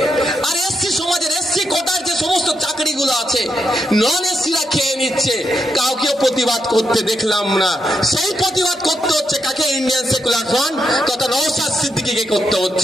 আর এসসি সমাজের এসসি কোটার যে সমস্ত চাকরিগুলো আছে নন এসসিরা খেয়ে নিচ্ছে, কাউকেও প্রতিবাদ করতে দেখলাম না। সেই প্রতিবাদ করতে হচ্ছে কাকে? ইন্ডিয়ান সেকুলার ফ্রন্ট তথা নওশাদ সিদ্দিকীকে করতে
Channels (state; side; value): normal; both; correlation 0.81